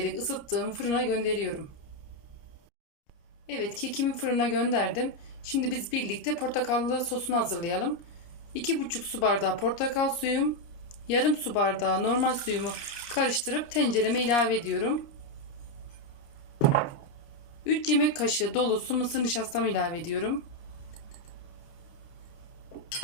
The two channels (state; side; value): late; right; 30 ms